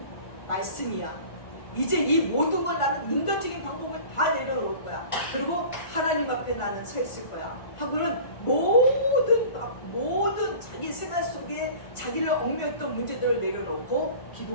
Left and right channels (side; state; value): right; late; 1.4 ms